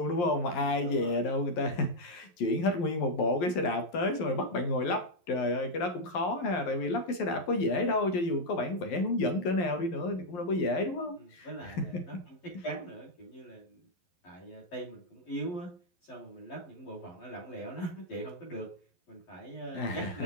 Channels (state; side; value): late; right; 11 ms